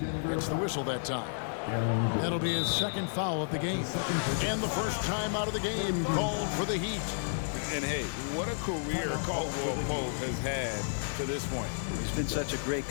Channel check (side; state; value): right; silent; 57 dB below the other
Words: gets the whistle that time. That'll be his 2nd foul of the game. And the first time out of the game called for the Heat. And hey, what a career Caldwell Pope has had to this point. He's been such a great